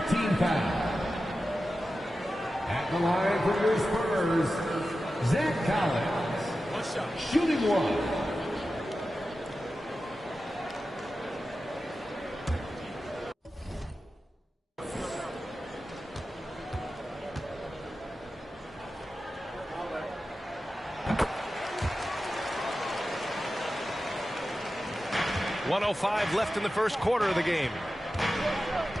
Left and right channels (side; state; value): both; normal; correlation 0.93